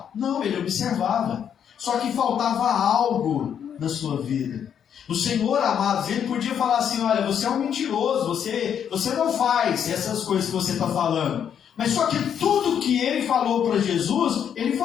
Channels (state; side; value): quieter; right; 8.5 dB